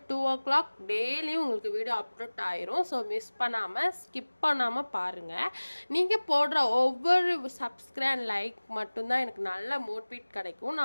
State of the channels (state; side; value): inverted; both; correlation -1.00